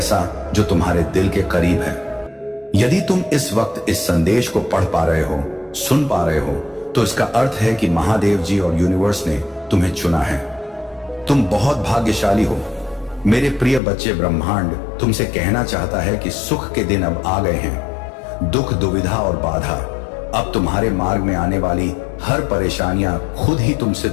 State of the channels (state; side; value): drops out; right; at 13.8 s